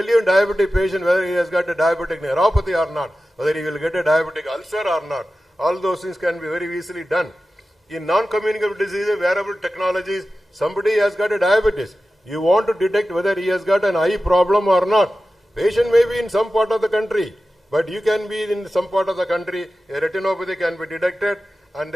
you in diabetic patient whether he has got a diabetic neuropathy or not. Whether he will get a diabetic ulcer or not. All those things can be very easily done. In non-communicable diseases, wearable technologies, somebody has got a diabetes. You want to detect whether he has got an eye problem or not. Patient may be in some part of the country, but you can be in some part of the country, a retinopathy can be detected, and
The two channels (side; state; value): both; normal; correlation 0.94